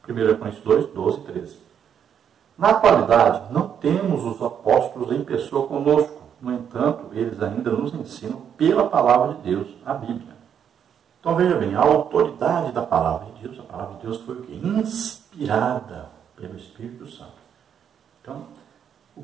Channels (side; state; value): left; quieter; 8.4 dB